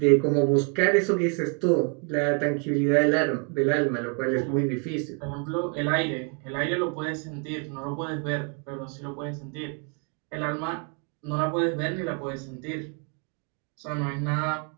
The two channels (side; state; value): left; quieter; 37.7 dB